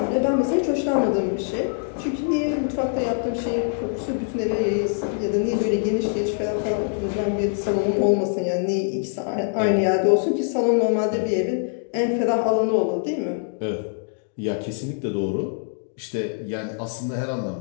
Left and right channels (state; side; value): silent; right; 63 dB below the other